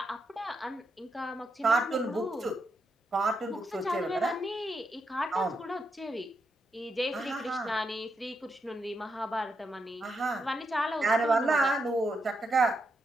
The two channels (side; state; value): both; normal; correlation 0.82